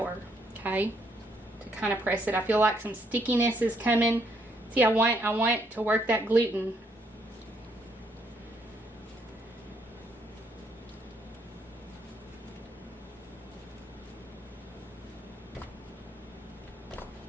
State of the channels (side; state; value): both; normal; correlation 0.72